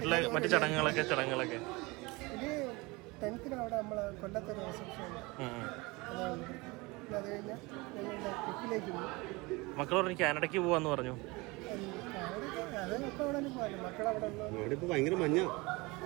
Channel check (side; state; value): left; quieter; 24.3 dB